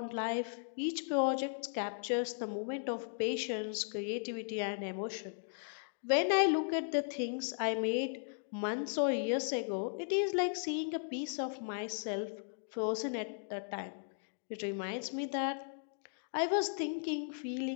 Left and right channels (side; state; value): right; silent; digital silence